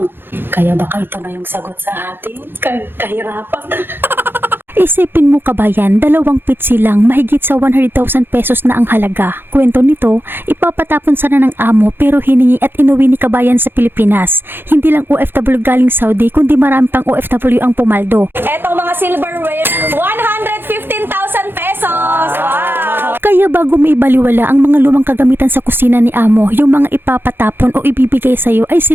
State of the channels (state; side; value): late; left; 0.10 ms